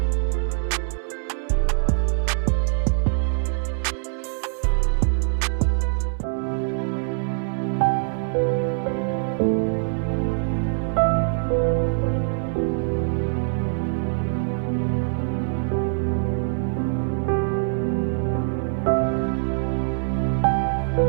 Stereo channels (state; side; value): silent; left; 63 dB below the other